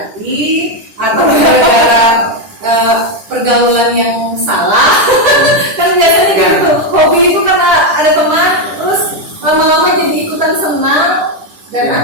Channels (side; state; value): left; late; 10 ms